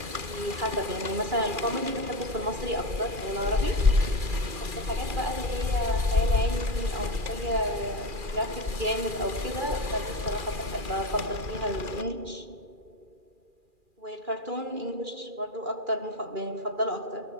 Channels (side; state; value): left; late; 2.4 ms